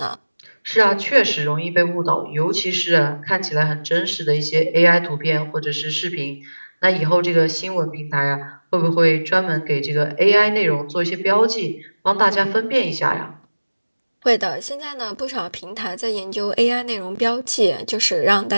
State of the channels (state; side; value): inverted; both; correlation -1.00